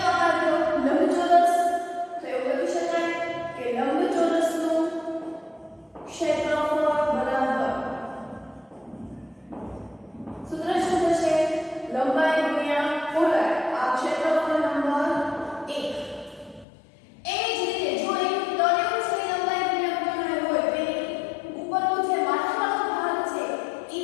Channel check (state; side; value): drops out; right; at 16.7 s